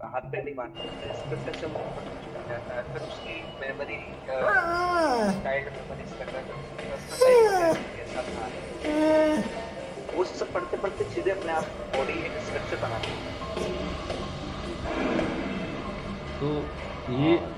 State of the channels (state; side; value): identical; both; correlation 1.00